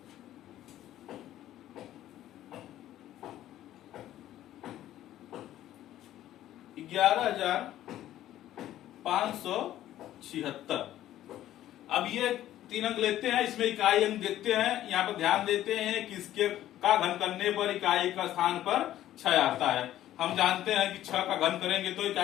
11,576। अब ये 3 अंक लेते हैं, इसमें इकाई अंक देखते हैं। यहाँ पर ध्यान देते हैं कि इसके का घन करने पर इकाई का स्थान पर 6 आता है। हम जानते हैं कि 6 का घन करेंगे तो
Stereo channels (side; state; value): right; quieter; 13.0 dB